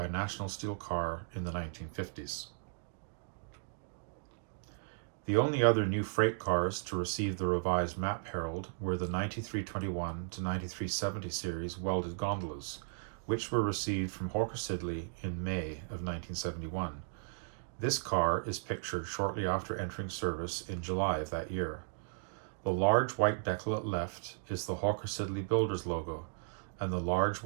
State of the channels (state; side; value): silent; left; digital silence